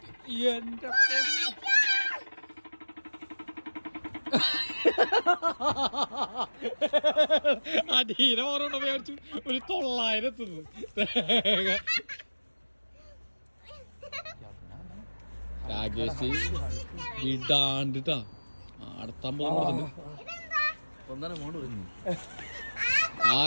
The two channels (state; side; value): inverted; both; correlation -1.00